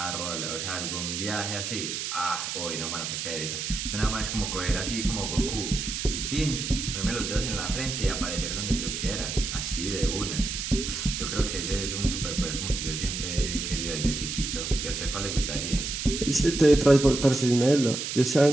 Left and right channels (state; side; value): noise; right; hiss, 4 dB below the sound